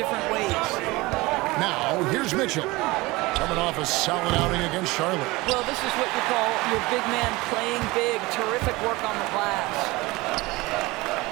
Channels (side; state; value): left; quieter; 21.7 dB